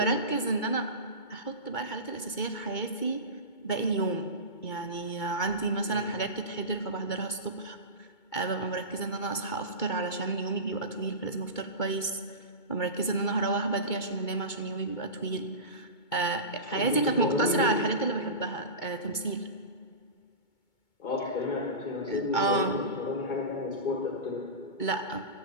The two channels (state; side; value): late; right; 2.2 ms